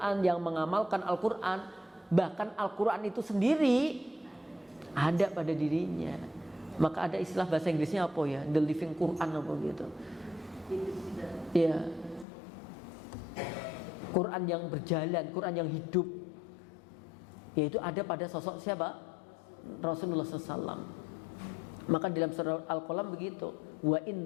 yang mengamalkan Al-Quran. Bahkan Al-Quran itu sendiri ada pada dirinya. Maka ada istilah bahasa Inggrisnya apa ya? The living Quran apa gitu. Ya. Quran yang berjalan, Quran yang hidup. Yaitu ada pada sosok siapa? Rasulullah SAW. Maka dalam surah Al-Qalam begitu. Wa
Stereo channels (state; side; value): drops out; right; at 12.2 s